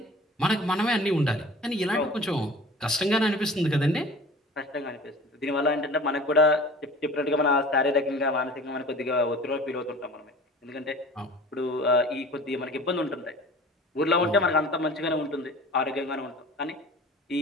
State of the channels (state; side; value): normal; both; correlation 0.42